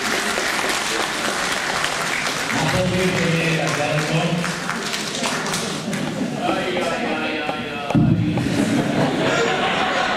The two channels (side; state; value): both; identical; correlation 1.00